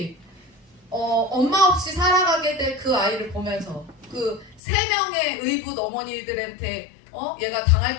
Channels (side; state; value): right; drops out; at 4.6 s